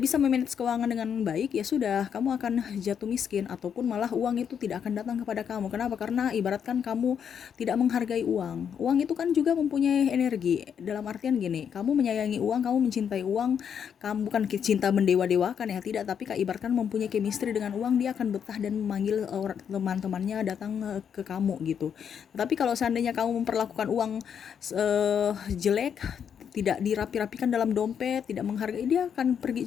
bisa memanage keuangan dengan baik, ya sudah, kamu akan jatuh miskin ataupun malah uang itu tidak akan datang kepada kamu. Kenapa? Karena ibaratkan kamu tidak menghargai uang. Uang itu kan juga mempunyai energi. Dalam artian gini, kamu menyayangi uang, kamu mencintai uang, kamu bukan cinta mendewa-dewakan ya, tidak, tapi ibaratkan mempunyai chemistry dengan uang, dia akan betah dan memanggil teman-temannya datang ke kamu gitu. Tapi kalau seandainya kamu memperlakukan uang jelek, tidak dirapi-rapikan dalam dompet, tidak menghargai, dia akan pergi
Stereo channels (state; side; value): quieter; right; 7.8 dB